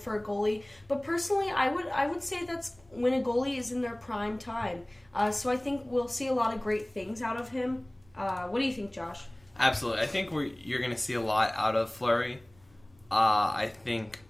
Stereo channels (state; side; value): noise; left; rumble, 29 dB below the sound